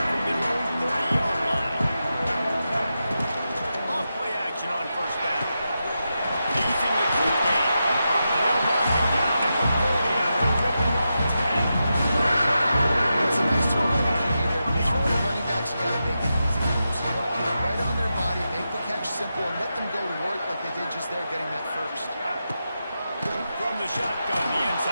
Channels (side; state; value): both; inverted; correlation -0.89